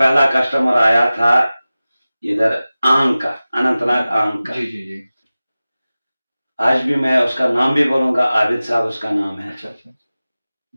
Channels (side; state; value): both; inverted; correlation -0.97